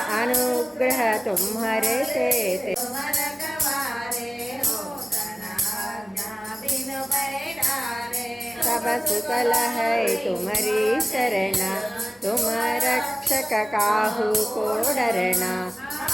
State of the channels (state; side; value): normal; both; correlation 0.97